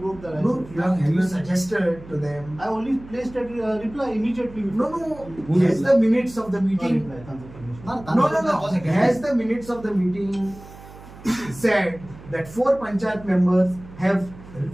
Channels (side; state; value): right; noise; hum, 18 dB below the sound